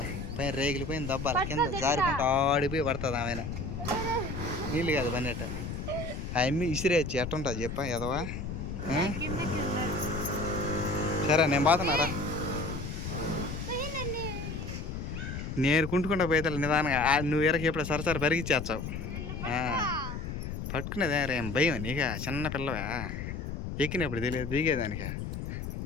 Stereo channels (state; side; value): noise; left; rumble, 5 dB below the sound